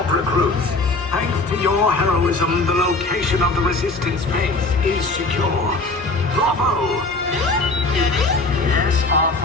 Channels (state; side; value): quieter; right; 3.2 dB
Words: recruits. Thanks to your heroism, the location of the Resistance base is secure. Bravo! Yes,